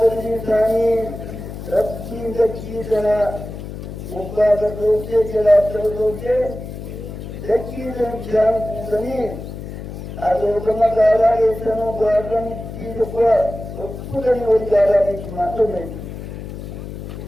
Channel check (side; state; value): left; noise; hum, 9 dB below the sound